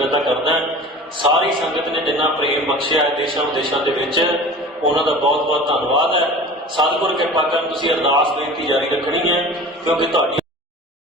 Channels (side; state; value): both; normal; correlation 0.39